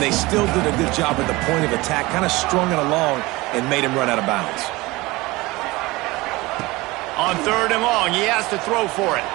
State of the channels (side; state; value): left; quieter; 21.4 dB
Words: still did a good job at the point of attack, kind of strung it along and made him run out of bounds. On 3rd and long, he has to throw for it.